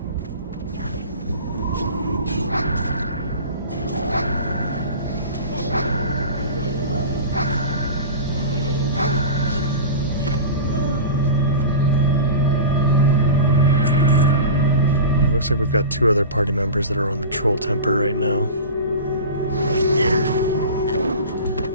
Looks like we've got 2 other party members that are on the Troll Temper right now.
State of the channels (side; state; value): both; inverted; correlation -0.32